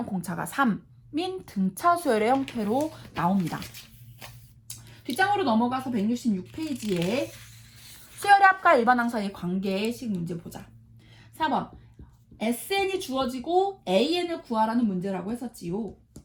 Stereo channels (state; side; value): identical; both; correlation 1.00